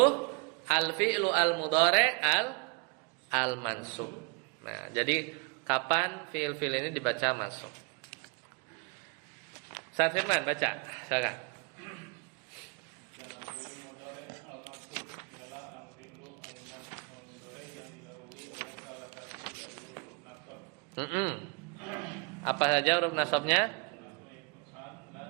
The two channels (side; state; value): left; quieter; 31.7 dB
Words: al-fi'lu al-mudhari' al-mansub. Nah, jadi kapan fi'il-fi'il ini dibaca mansub? Ustaz Firman baca, silakan. Apa saja huruf nasabnya?